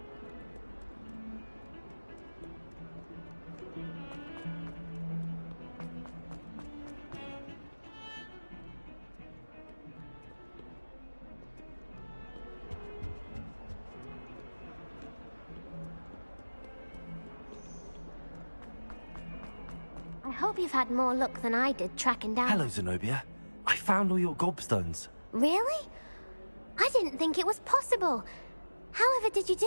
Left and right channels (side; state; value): both; inverted; correlation -1.00